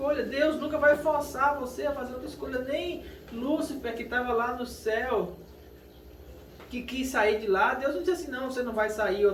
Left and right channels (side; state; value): both; identical; correlation 1.00